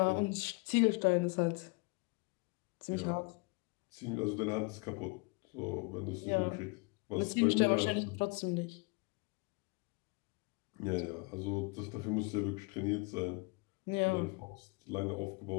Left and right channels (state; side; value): quieter; right; 29.5 dB